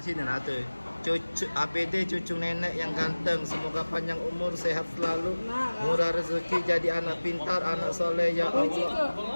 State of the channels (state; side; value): inverted; both; correlation -1.00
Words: nah tuh. Cucu APD cucu nenek yang ganteng, semoga panjang umur, sehat selalu, murah rezeki, jadi anak pintar, anak soleh ya Allah.